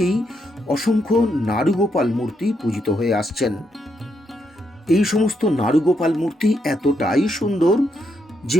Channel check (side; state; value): both; normal; correlation 0.79